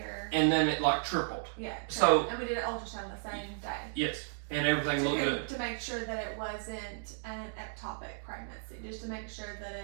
And then it like tripled. Yeah. So and we did an ultrasound the same day. Yes, and everything looked good to make sure that it wasn't an ectopic pregnancy, just to make sure that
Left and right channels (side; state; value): left; silent; digital silence